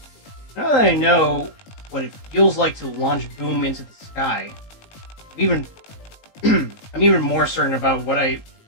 Now that I know what it feels like to launch boom into the sky, I'm even more certain about what I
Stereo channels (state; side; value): late; right; 19 ms